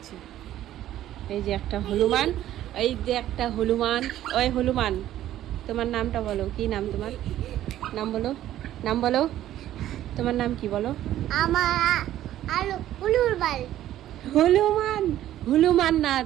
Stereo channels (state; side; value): quieter; left; 12.9 dB